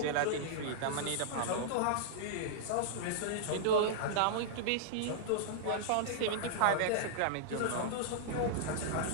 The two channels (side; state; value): both; different; correlation -0.01